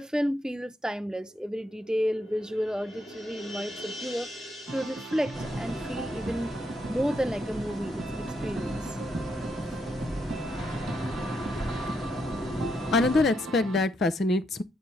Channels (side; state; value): both; normal; correlation 0.79